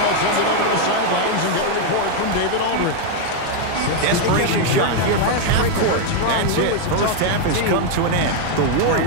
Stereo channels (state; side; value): different; both; correlation 0.00